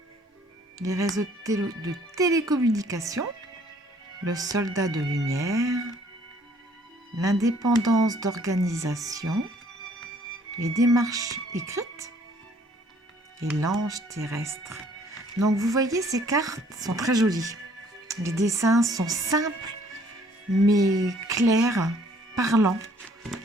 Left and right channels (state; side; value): normal; both; correlation 0.61